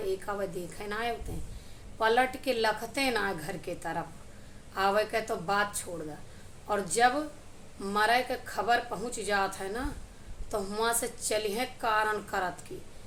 वह देखे ना आए उते। पलट के लखते ना घर के तरफ आवे के तो बात छोड़ दा। और जब मरे के खबर पहुँच जात है ना, तो हुआ से चलिए कारण करत की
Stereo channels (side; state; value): both; identical; correlation 1.00